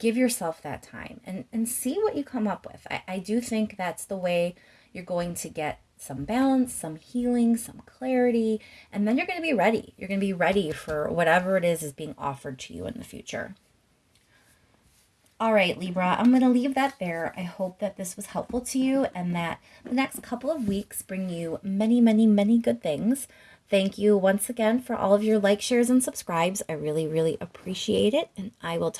yourself that time and see what you come up with. I do think that's the way you're going to get some balance, some healing, some clarity, and then you're going to be ready. You're going to be ready for whatever it is being offered to you in the future. All right, Libra, I'm going to leave that there. I hope that this was helpful to you and that the next couple of weeks bring you many, many, many good things. Thank you once again for all of your likes, shares, and subscribes. I really, really appreciate it. And I will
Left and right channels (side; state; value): both; identical; correlation 1.00